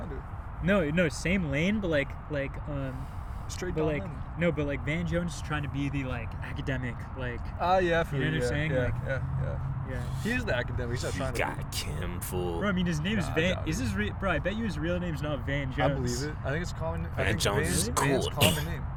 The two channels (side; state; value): both; identical; correlation 1.00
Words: of. no, same lane, but like Straight but Don like Lemon. no, but like Van Jones is trying to be the like academic, like Yeah, I feel You know what I'm yeah, saying? Yeah, Like- yeah. He is the academic. He's not You trying to. got Kim fool. bro. I mean, his name's Nah, I Van. doubt Is it. his bro? I bet you his real name's not Van Jones. I believe it. I think it's a common. I Van think Jones Van's, is Van's cool. common name.